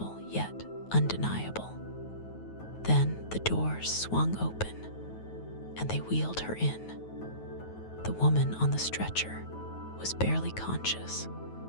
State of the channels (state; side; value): late; right; 9.3 ms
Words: yet undeniable. Then the doors swung open, and they wheeled her in. The woman on the stretcher was barely conscious,